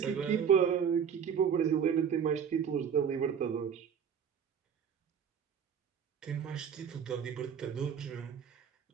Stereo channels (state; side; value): quieter; left; 7.6 dB